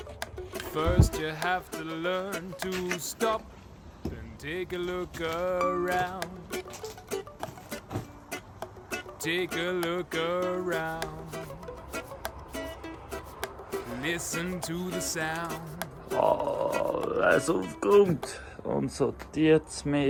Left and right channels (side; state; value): both; identical; correlation 1.00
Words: First, you have to learn to stop and take a look around. Take a look around. Listen to the sound. Alles aufgeräumt und sortiert es